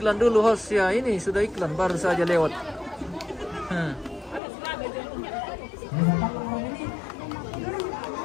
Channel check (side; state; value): right; drops out; at 4.4 s